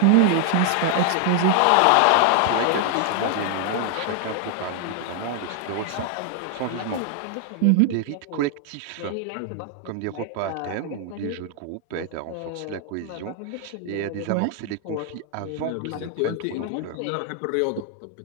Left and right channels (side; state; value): both; different; correlation 0.00